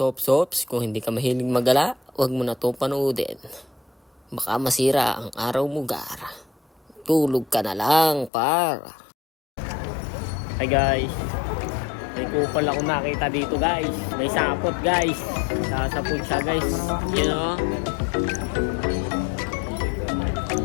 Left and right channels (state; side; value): drops out; right; at 8.3 s